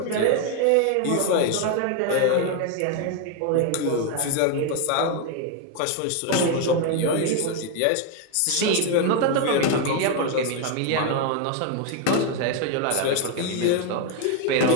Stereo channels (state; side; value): different; both; correlation 0.01